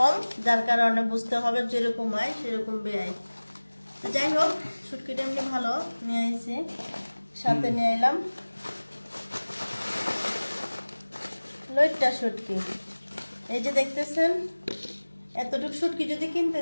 যার কারণে বুঝতে হবে যেরকম হয় সেরকম ব্যয়। যাই হোক, শুটকিটা এমনি ভালো নিয়ে এসেছি, সাথে নিয়ে এলাম লইট্টা শুটকি। এই যে দেখতেছেন, এতটুকু শুটকি যদি কিনতে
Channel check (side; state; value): both; inverted; correlation -1.00